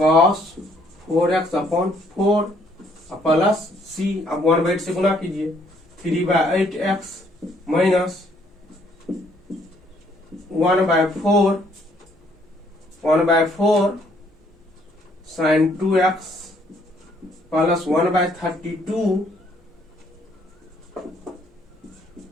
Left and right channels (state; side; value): normal; both; correlation 0.66